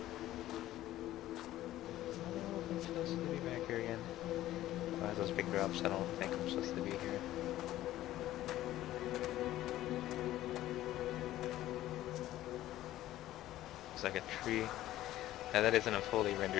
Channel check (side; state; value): right; quieter; 14.4 dB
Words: I'm supposed to be back here again. Oh, those big drops, I don't think I'm supposed to be here. Like a tree. Now that isn't a fully